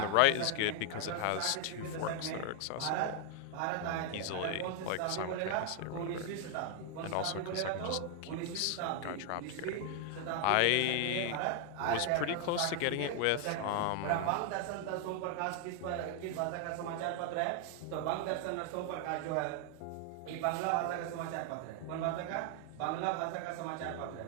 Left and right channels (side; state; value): both; different; correlation 0.00